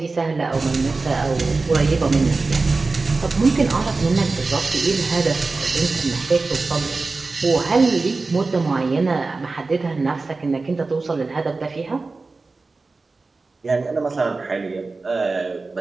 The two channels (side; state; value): left; quieter; 3.8 dB